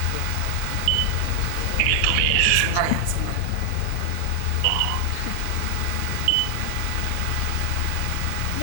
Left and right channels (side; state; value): both; different; correlation 0.00